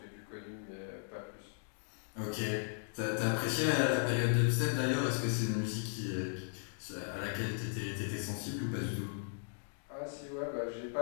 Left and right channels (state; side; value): silent; right; digital silence